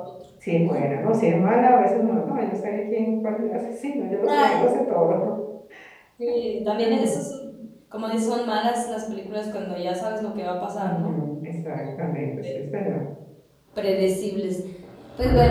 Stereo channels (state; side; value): identical; both; correlation 1.00